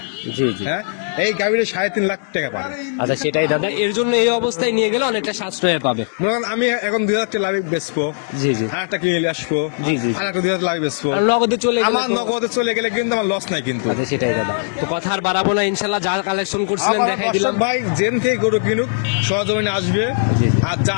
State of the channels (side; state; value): right; silent; digital silence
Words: জি জি। হ্যাঁ, এই গাভীরে 3.5 লাখ টাকা পাবে। আচ্ছা, সেটাই দাদা, এর জন্য এই অবস্থায় নিয়ে গেলে অনেকটা সাশ্রয়ে পাবে। মনে করেন আমি এখন 2,000 টাকা লাভে বেচবো, জি জি, আর একটা কিনে নিয়ে আসবো, জি, জি। আর একটা 2,000 লাভে বেচবো, আর নগদে চলে গেলে আমার তো- নগদে চলে গেলে কিন্তু আমার লস নাই কিন্তু। আচ্ছা, সেটাই দাদা, তো কথা আর বাড়াবো না, ইনশাল্লাহ যা কালেকশন করছিলেন আমার দেখাই দিলাম। দর্শক ভাই জেন থেকে গরু কিনুক, সহজমিনে আসবে, জি, জি। আর